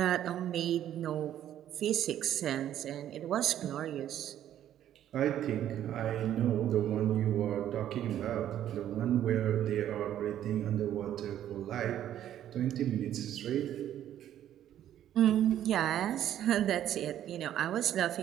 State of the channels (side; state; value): left; quieter; 11.3 dB